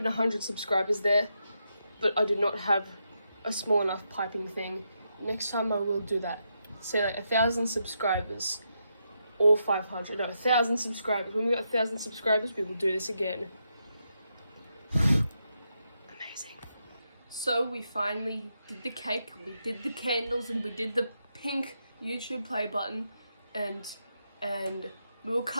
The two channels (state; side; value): inverted; both; correlation -0.82